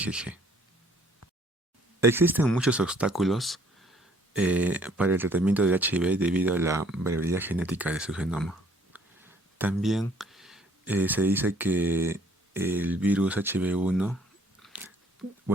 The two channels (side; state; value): both; normal; correlation 0.60